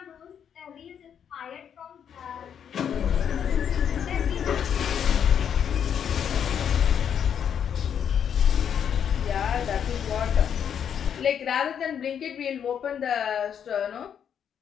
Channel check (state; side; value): quieter; right; 8.3 dB